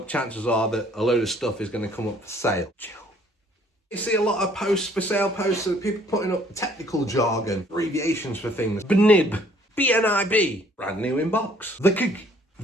Chances are that a load of stuff is going to come up for sale. Chill. You see a lot of posts, for sale posts, of people putting up technical jargon, abbreviations for things. BNIB, BNIB, brand new in box. The gig,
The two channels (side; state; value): both; normal; correlation 0.60